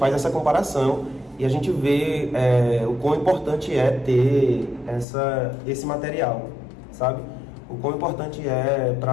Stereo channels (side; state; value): right; drops out; at 5.1 s